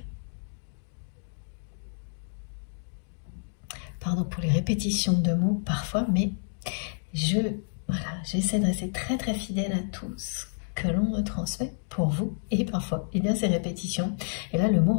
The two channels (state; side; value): silent; right; digital silence